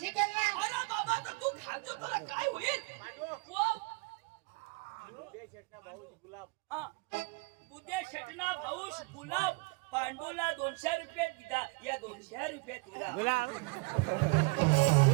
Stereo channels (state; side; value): quieter; left; 29.5 dB